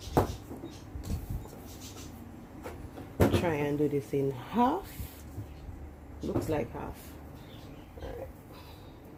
Try and do this in half. Looks like half. Alright.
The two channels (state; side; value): identical; both; correlation 1.00